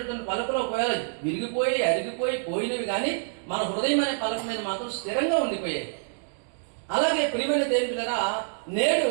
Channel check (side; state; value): left; silent; digital silence